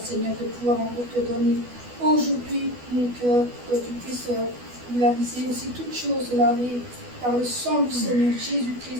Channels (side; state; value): left; late; 12 ms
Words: Seigneur, de pouvoir encore te donner aujourd'hui mon cœur, que tu puisses laver aussi toutes choses lavées par le sang du Seigneur